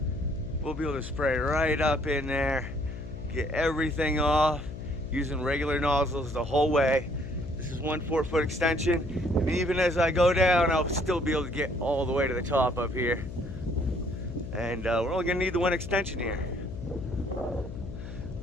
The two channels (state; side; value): noise; left; hum, 10 dB below the sound